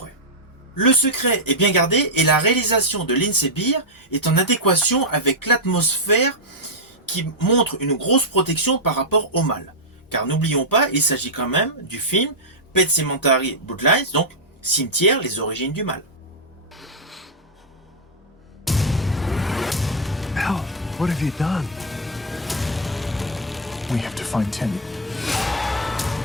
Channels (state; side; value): normal; both; correlation -0.03